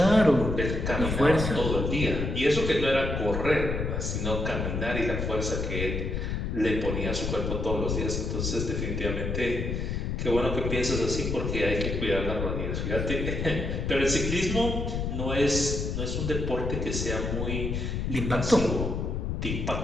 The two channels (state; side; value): noise; left; rumble, 2 dB below the sound